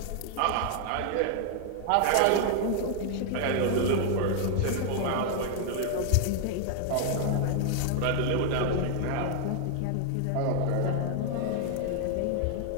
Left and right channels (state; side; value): different; both; correlation 0.00